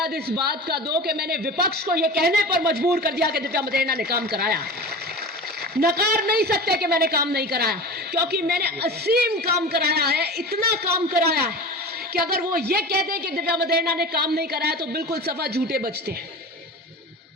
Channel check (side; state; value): both; normal; correlation 0.33